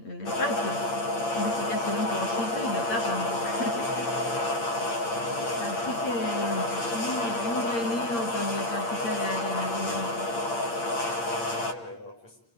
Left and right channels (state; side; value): late; right; 8.7 ms